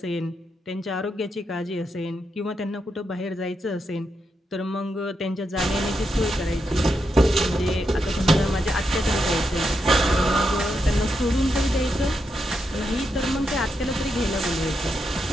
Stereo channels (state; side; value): normal; both; correlation 0.84